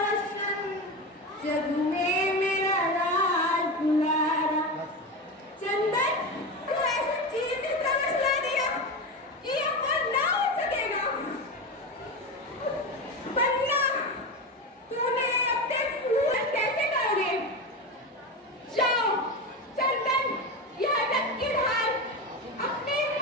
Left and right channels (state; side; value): normal; both; correlation 0.20